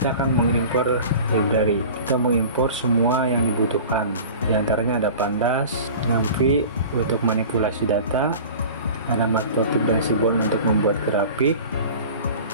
akan mengimpor library. Kita mengimpor semua yang dibutuhkan. Di antaranya ada pandas, Ngamfi untuk manipulasi data, ada matplotlib dan seaborn untuk membuat grafik,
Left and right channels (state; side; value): inverted; both; correlation -0.39